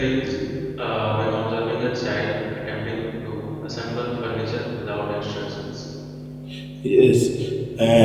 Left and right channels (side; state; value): both; identical; correlation 1.00